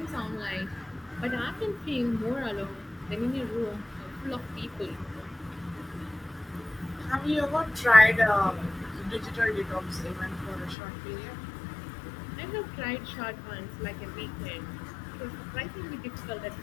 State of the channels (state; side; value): drops out; right; at 10.8 s